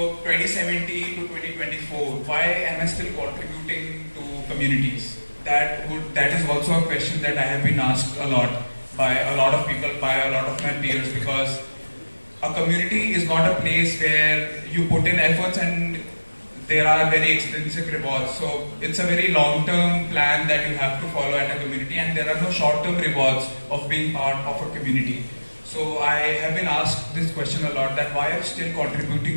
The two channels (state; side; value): inverted; both; correlation -1.00